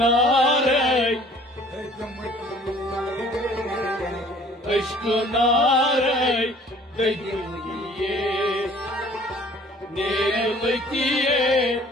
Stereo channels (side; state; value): both; normal; correlation 0.53